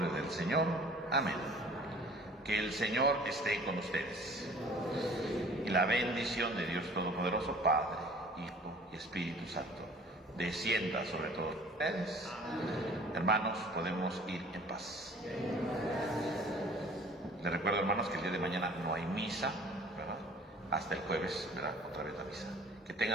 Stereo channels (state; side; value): normal; both; correlation 0.49